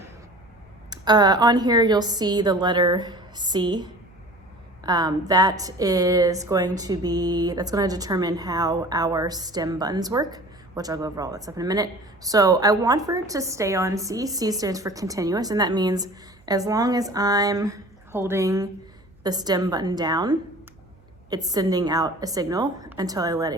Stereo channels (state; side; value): noise; right; hum, 30 dB below the sound